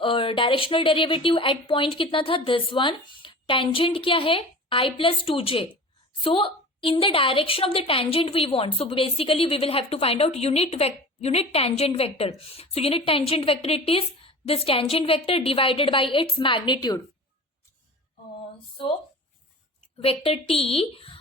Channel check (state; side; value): normal; both; correlation 0.37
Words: directional derivative at point kitna tha? This one. Tangent kya hai? I plus 2j. So in the direction of the tangent we want. So basically we will have to find out unit tangent vector. So unit tangent vector it is this tangent vector divided by its magnitude. So vector t